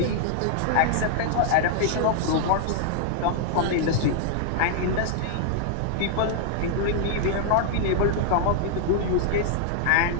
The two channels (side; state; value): both; different; correlation -0.01